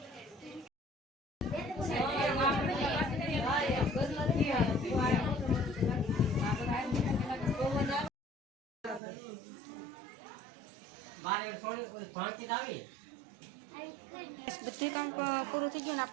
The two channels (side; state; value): left; drops out; at 9.0 s